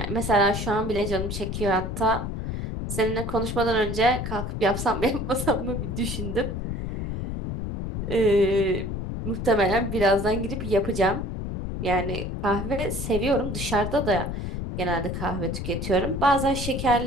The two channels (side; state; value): left; noise; rumble, 4 dB below the sound